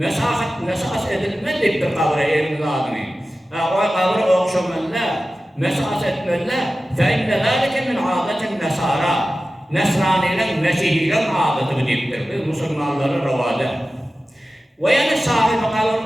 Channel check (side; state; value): both; normal; correlation 0.95